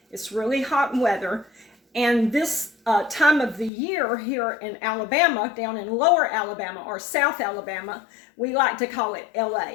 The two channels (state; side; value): drops out; right; at 3.7 s